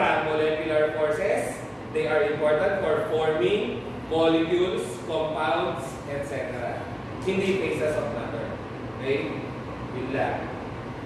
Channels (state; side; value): identical; both; correlation 1.00